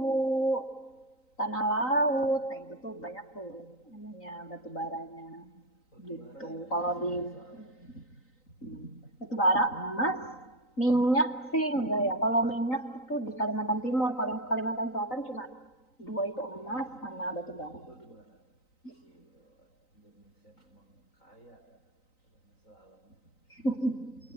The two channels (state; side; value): late; right; 3.9 ms